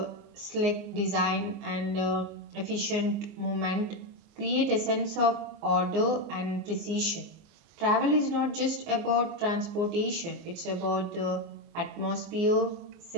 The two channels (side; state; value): left; late; 24 ms